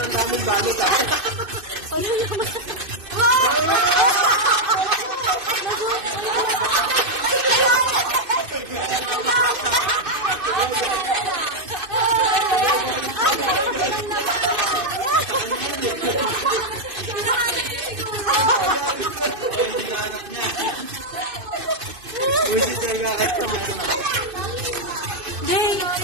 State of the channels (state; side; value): late; left; 2.6 ms